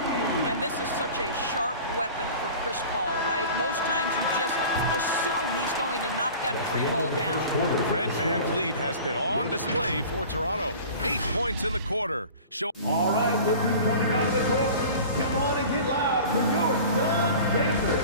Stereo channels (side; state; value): both; inverted; correlation -0.40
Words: And this is such a sharp weapon for Chris Paul, right? Most times you just assume he's going to knock that free ball down. Fred Van Vliet has been on display for Toronto. 8 points in the quarter. All right, look who's coming out of the court. Come on and get loud for your Suns dancers.